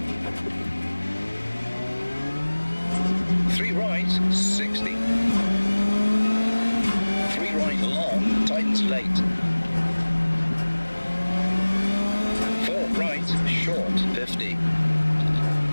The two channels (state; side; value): inverted; both; correlation -1.00